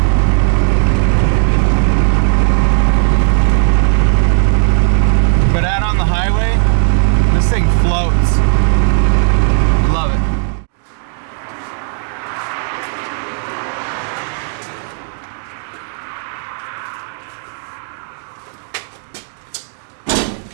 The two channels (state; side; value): silent; left; 69 dB below the other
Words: But out on the highway, this thing floats. Love it.